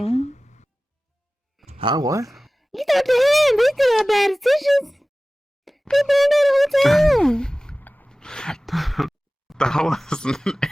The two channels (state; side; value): normal; both; correlation 0.97